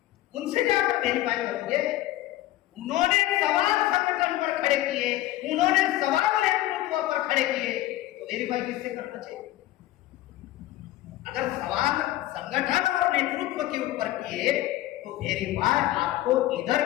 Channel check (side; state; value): right; quieter; 15.3 dB